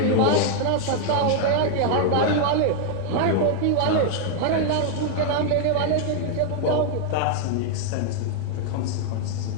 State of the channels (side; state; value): both; different; correlation 0.00